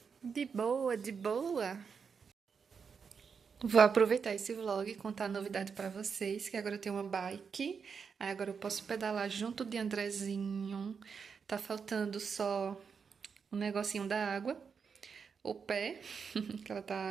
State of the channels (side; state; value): left; quieter; 6.0 dB